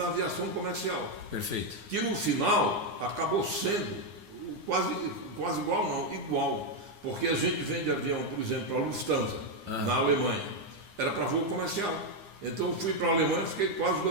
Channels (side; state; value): left; late; 9.7 ms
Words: aviação comercial. Perfeito. Que no final acabou sendo quase igual, não, igual. Porque a gente vende avião, por exemplo, a Lufthansa, na Alemanha. Era para voo comercial. Então eu fui para a Alemanha, fiquei quase